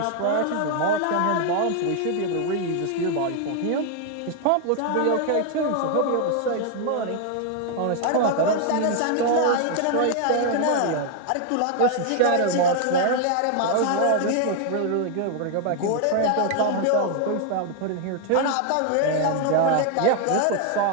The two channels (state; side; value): different; both; correlation 0.00